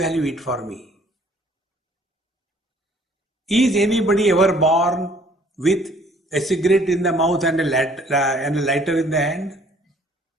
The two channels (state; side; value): normal; both; correlation 0.58